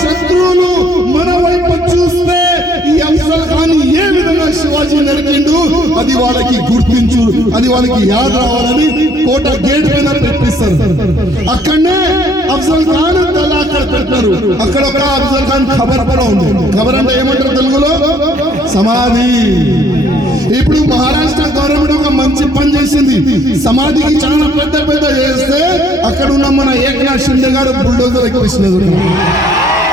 శత్రువులు మన వైపు చూస్తే ఈ అఫ్జల్ ఖాన్ ఏ విధంగా శివాజీ నరికిండు అది వాళ్ళకి గుర్తించు, అది వాళ్ళకి యాద రావాలని కోట గేట్ పైన పెట్టిస్తారు. అక్కడనే అఫ్జల్ ఖాన్ తల అక్కడ పెట్టారు. అక్కడ ఒక అఫ్జల్ ఖాన్ ఖబర్ కూడా ఉంది. ఖబర్ అంటే ఏమంటారు తెలుగులో, సమాధి. ఇప్పుడు మహారాష్ట్ర గవర్నమెంట్ ఒక మంచి పని చేసింది, సమాధికి చాలా పెద్ద పెద్ద చేస్తే అక్కడ ఉన్న మన ఏకనాథ్ షిండే గారు బుల్డోజర్ ఎక్కిస్తున్నారు.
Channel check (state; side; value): normal; both; correlation 0.63